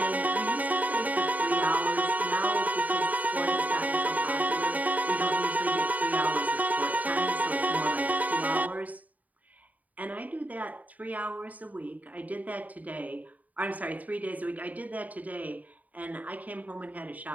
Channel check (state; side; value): late; left; 0.075 ms